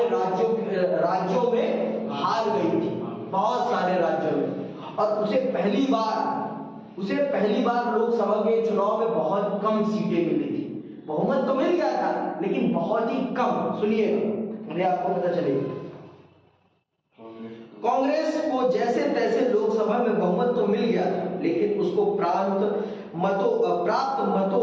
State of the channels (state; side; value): identical; both; correlation 1.00